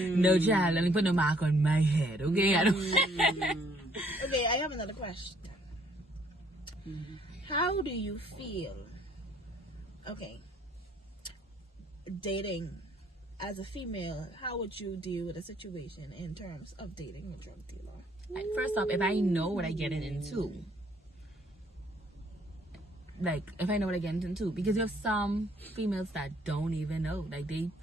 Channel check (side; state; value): both; normal; correlation 0.64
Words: child. Let me put no mark on my head, okay? I don't. Okay, I have another question. How do you feel? Okay. Dating as a female, how would you deal with a situation in terms of dating a drug dealer? First off, if I know what I get into, like if I know what I get into, because you have some females that don't even know, like